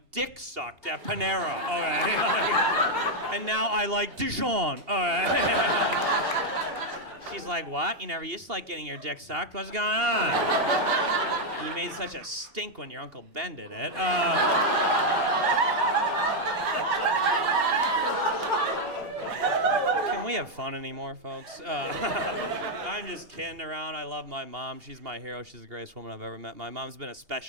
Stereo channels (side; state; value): left; late; 2.8 ms